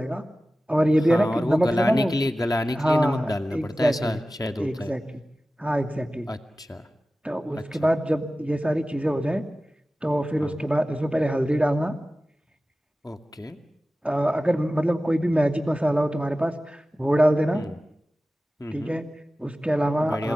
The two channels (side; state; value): both; normal; correlation 0.95